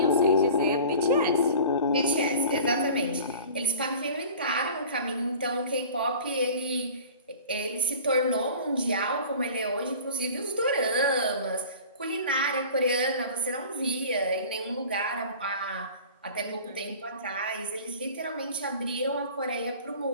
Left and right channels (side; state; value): both; inverted; correlation -0.42